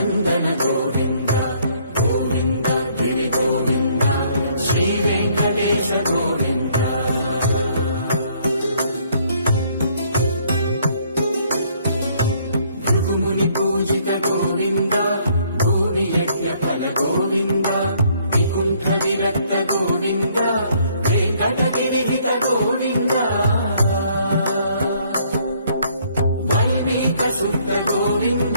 గోవింద గోవింద గిరి గోవింద శ్రీ వెంకటేశ గోవింద భృగుముని పూజిత గోవింద భూమి యజ్ఞ ఫల గోవింద వికుంఠ విరక్త గోవింద వెంకటగిరి హిత గోవింద వల్మీక శుద్ధ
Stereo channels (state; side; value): inverted; both; correlation -0.64